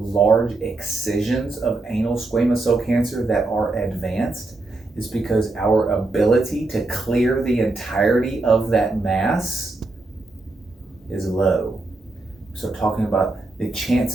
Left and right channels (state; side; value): quieter; left; 3.1 dB